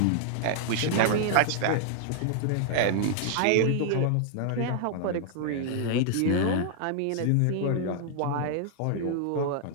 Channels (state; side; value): different; both; correlation 0.00